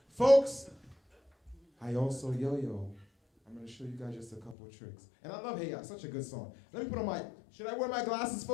Folks, I also yo-yo. I'm going to show you guys just a couple of tricks. And I love Hey Ya, such a good song. Let me put on my, should I wear my glasses,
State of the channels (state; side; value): drops out; right; at 4.5 s